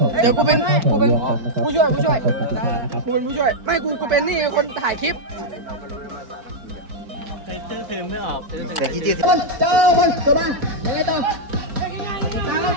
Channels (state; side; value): late; left; 4.5 ms